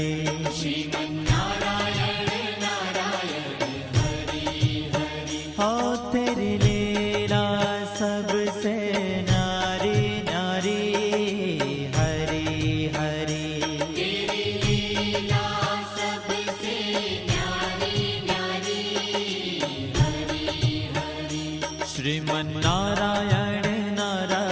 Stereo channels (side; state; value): both; identical; correlation 1.00